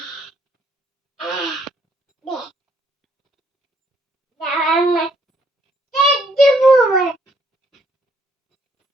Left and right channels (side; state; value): both; normal; correlation 0.68